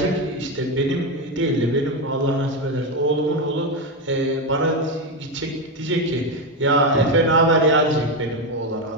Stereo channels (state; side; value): normal; both; correlation 0.10